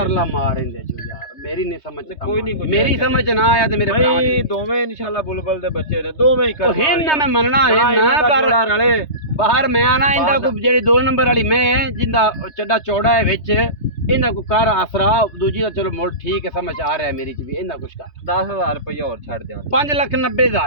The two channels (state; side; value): late; right; 3.3 ms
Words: ਮਾਰ ਇਹਦੇ ਚੋਂ ਯਾਰ। ਮੇਰੀ ਨਹੀਂ ਸਮਝ ਕੋਈ ਨਹੀਂ, ਕੋਈ ਮੇਰੀ ਸਮਝ ਚ ਨਾ ਆਇਆ ਤੇ ਮੇਰੇ ਭਰਾ ਭਾਈ ਦੀ। ਦੋਵੇਂ ਇਨਸ਼ਾਅੱਲਾ ਬੁਲਬੁਲ ਦੇ ਬੱਚੇ ਨੇ, ਦੋਵੇਂ ਹੀ ਕਰ ਉਹ ਹਿੰਨ ਨਾ ਮੈਂ ਮੰਨਣਾ ਹੈ ਨਾ, ਪਰ ਰਲੇ ਬਾਹਰ ਮੈਂ ਆਣਾ ਇਹਦਾ ਕੋਈ ਜਿਹੜੀ 2 ਨੰਬਰ ਵਾਲੀ ਮੈਂ ਹੈ ਜਿੰਦਾ ਚੱਡਾ ਚੌੜਾ ਹੈ ਵਿੱਚ, ਇਹਦਾ ਕੋਈ ਕਰ ਆਸਰਾ। ਦੂਜੀ ਦਾ ਚਲੋ ਮੁੱਲ ਠੀਕ ਹੈ, ਸਮਝ ਆ ਰਿਹਾ ਮੇਰੀ ਚ ਵੀ। ਇਹਦਾ ਕੁਛ ਕਰ 10,000 ਰੁਪਏ ਹੋਰ ਛੱਡ ਦਿਆਂ।